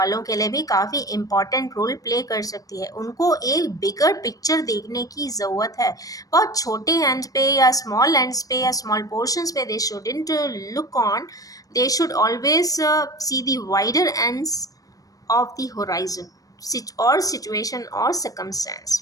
के लिए भी काफ़ी इम्पॉर्टेंट रोल प्ले कर सकती है। उनको एक बिगर पिक्चर देखने की ज़रूरत है, बहुत छोटे एंड पे या स्मॉल एंड्स पे या स्मॉल पोर्शंस पे they shouldn't look on, they should always see the wider ends of the horizon और सिचुएशन और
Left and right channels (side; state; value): right; late; 0.17 ms